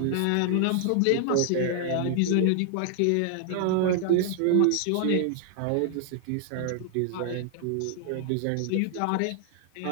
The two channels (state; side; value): different; both; correlation 0.00